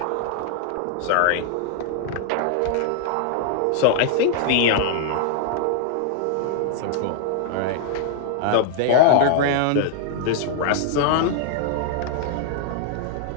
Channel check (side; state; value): both; different; correlation 0.00